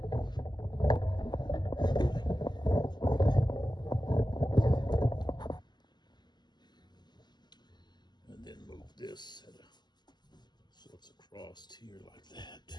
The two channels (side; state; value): right; late; 0.21 ms